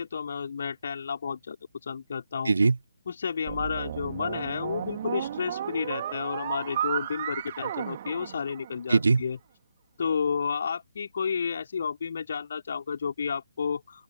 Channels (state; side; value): inverted; both; correlation -0.81